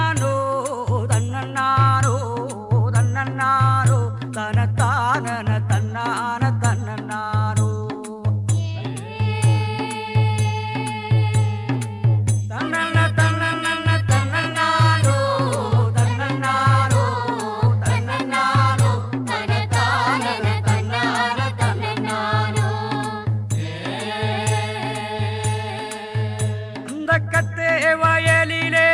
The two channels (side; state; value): both; identical; correlation 1.00